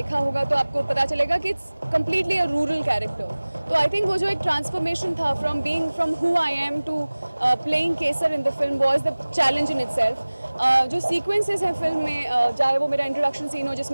होगा तो आपको पता चलेगा कि it's completely a rural character. तो आई थिंक वो जो एक ट्रांसफॉर्मेशन था from who I am to playing Kesar in the film was the challenge in itself. जो सीक्वेंसेस हैं फिल्म में, चाहे वो मेरा इंट्रोडक्शन सीन हो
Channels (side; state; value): both; inverted; correlation -1.00